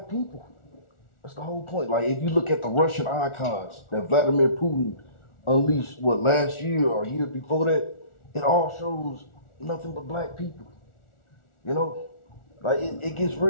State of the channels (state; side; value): late; right; 1.4 ms